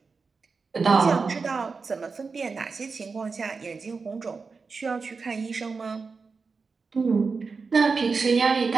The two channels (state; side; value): quieter; left; 4.7 dB